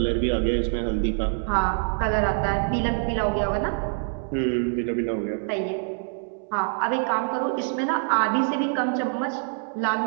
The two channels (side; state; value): left; silent; 61 dB below the other